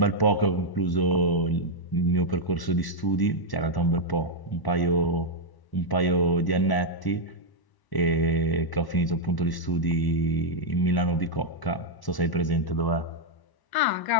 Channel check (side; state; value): right; late; 1.0 ms